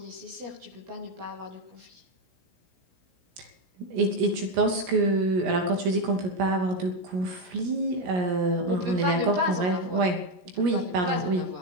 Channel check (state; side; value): late; left; 17 ms